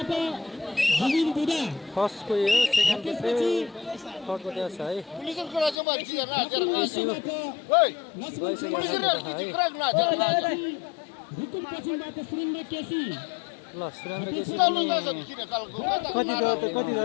फर्स्टको यो सेकेन्डको थर्डको त्यहाँ छ है। ल सुरेन्द्र केसी कति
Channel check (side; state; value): right; drops out; at 5.8 s